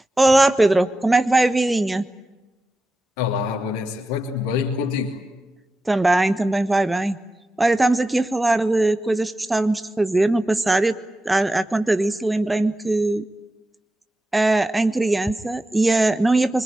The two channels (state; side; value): normal; both; correlation 0.92